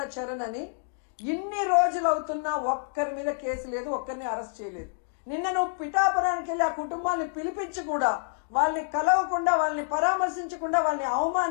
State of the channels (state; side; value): silent; right; digital silence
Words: చరణ్ అని ఇన్ని రోజులు అవుతున్నా ఒక్కరి మీద కేసు లేదు, ఒక్కరిని అరెస్ట్ చేయలేదు. నిన్న నువ్వు పిఠాపురానికి వెళ్ళి ఆ కుటుంబాన్ని పిలిపించి కూడా వాళ్ళని కలవకుండా, వాళ్ళని పరామర్శించకుండా వాళ్ళని